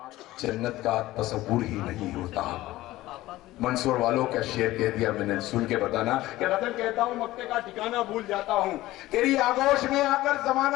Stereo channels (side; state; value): right; quieter; 16.8 dB